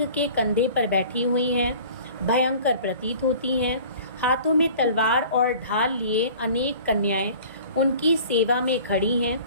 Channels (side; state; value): both; inverted; correlation -0.46